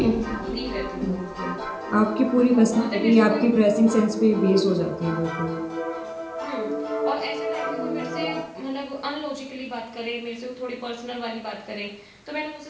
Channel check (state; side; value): identical; both; correlation 1.00